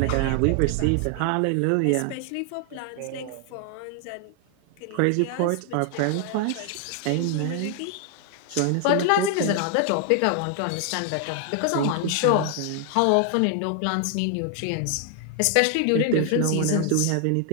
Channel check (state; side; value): different; both; correlation 0.00